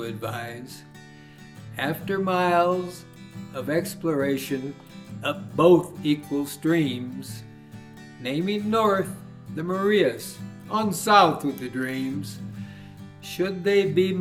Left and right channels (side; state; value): both; identical; correlation 1.00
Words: advise. After miles of exploration up both equal streams, naming north the Marias, on south with the dreams. Should they be